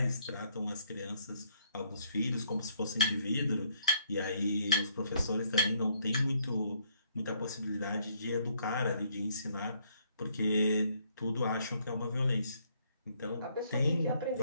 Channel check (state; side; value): inverted; both; correlation -0.69